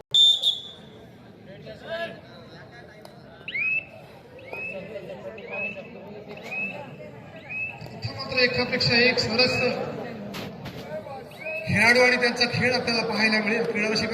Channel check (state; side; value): identical; both; correlation 1.00